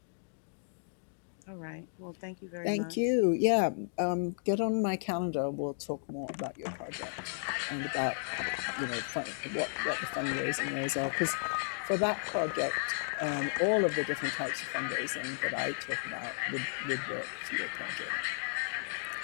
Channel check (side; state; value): right; silent; digital silence